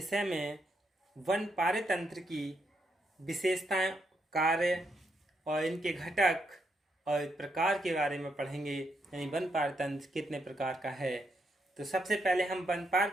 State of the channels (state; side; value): normal; both; correlation 0.79